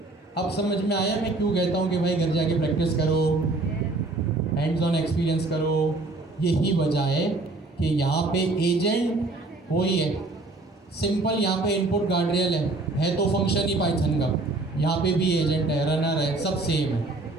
अब समझ में आया मैं क्यों कहता हूँ कि भाई घर जाके प्रैक्टिस करो, हैंड्स ऑन एक्सपीरियंस करो। यही वजह है कि यहाँ पे एजेंट वही है, सिंपल यहाँ पे इनपुट गार्डरेल है तो फंक्शन ही पाइथन का, यहाँ पे भी एजेंट है, रनर है, सब सेम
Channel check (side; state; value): left; quieter; 3.1 dB